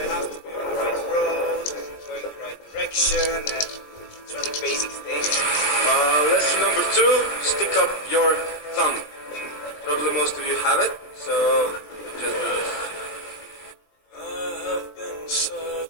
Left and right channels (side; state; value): right; late; 20 ms